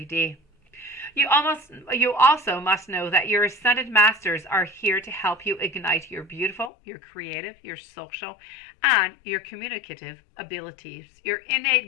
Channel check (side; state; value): right; drops out; at 6.7 s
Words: You also must know that your ascended masters are here to help you ignite your beautiful, your creative, your social, and your communicative abilities. Your